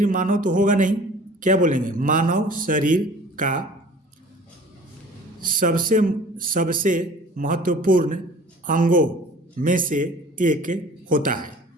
मानव तो होगा नहीं, क्या बोलेंगे, मानव शरीर का सबसे महत्वपूर्ण अंगों में से एक होता है।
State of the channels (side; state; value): both; normal; correlation 0.46